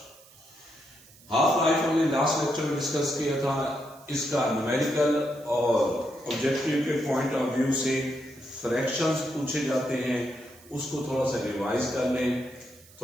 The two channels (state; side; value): noise; right; hiss, 24 dB below the sound